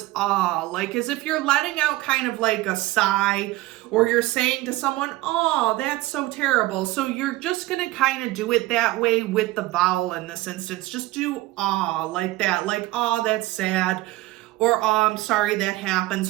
ah, like as if you're letting out kind of like a sigh, or you're saying to someone, oh, that's so terrible. So you're just going to kind of do it that way with the vowel in this instance. Just do ah like that, like, oh, that's sad, or oh, I'm sorry that happened.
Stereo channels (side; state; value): left; quieter; 18.4 dB